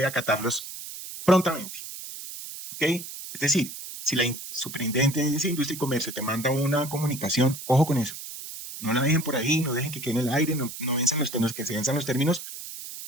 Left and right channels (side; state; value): right; noise; hiss, 11 dB below the sound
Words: acatarlos prontamente. ¿Ok? Es decir, si la Superintendencia de Industria y Comercio te manda una comunicación, ojo con eso. No la dejen por ahí, no dejen que quede en el aire, no venzan los términos, que se venzan los términos,